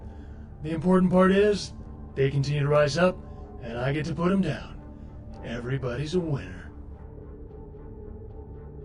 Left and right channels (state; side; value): identical; both; correlation 1.00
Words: The important part is, they continue to rise up, and I get to put them down. Everybody's a winner.